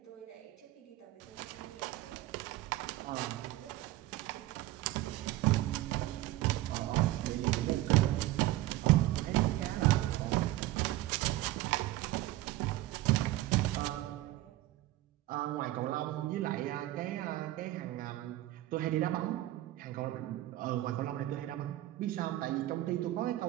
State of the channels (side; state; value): left; quieter; 16.2 dB